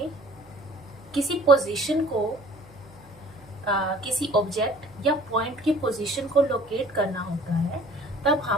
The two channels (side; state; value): right; noise; hum, 26 dB below the sound